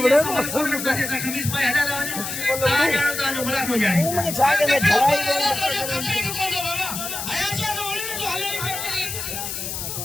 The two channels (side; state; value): left; noise; hiss, 5 dB below the sound